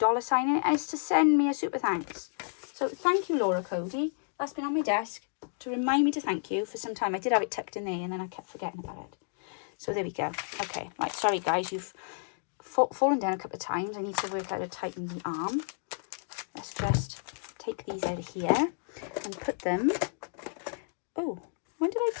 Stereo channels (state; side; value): silent; right; digital silence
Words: sign in it, and it's to send me a super thanks. So thank you, Laura Cody. That's been on my desk to remind me to thank you for some time. I did have it tucked in there, and then I kept forgetting about it. So there we go. Okay, right, sorry guys, you've fallen down a couple of times. I need to work out how to tighten the arm. Let's just take these out of here and put them. Oh, when did I